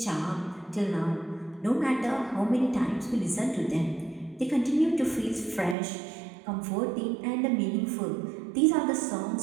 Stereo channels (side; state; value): left; drops out; at 5.8 s